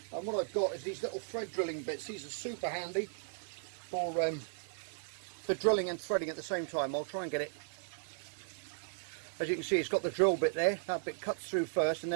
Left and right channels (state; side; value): silent; left; digital silence